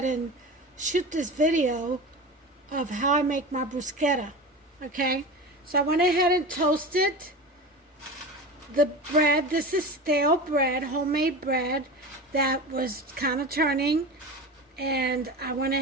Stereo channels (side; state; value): both; normal; correlation 0.29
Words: and shoot this video of how I make my bruschetta. Okay, so I went ahead and toasted the bread. This is stale bread, homemade bread that was kind of turning, and I went